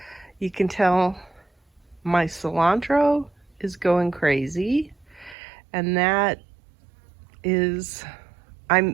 You can tell my cilantro is going crazy, and that is,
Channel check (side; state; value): left; drops out; at 5.4 s